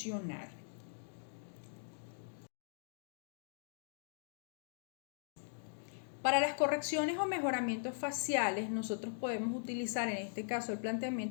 Para las correcciones o mejoramientos faciales, nosotros podemos utilizar, en este caso el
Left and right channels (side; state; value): right; silent; digital silence